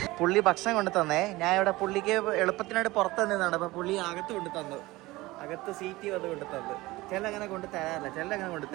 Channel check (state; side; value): quieter; left; 19.7 dB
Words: പുള്ളി ഭക്ഷണം കൊണ്ട് തന്നേ. ഞാൻ ഇവിടെ പുള്ളിക്ക് എളുപ്പത്തിനായിട്ട് പുറത്ത് തന്നതാണ്. അപ്പോൾ പുള്ളി അകത്ത് കൊണ്ട് തന്നു. അകത്ത് സീറ്റ് വന്ന് കൊണ്ട് തന്നു. ചില അങ്ങനെ കൊണ്ട് തരാറില്ല, ചില അങ്ങനെ കൊണ്ട്